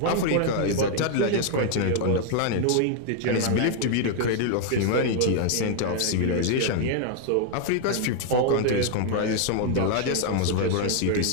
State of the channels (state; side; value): different; both; correlation 0.00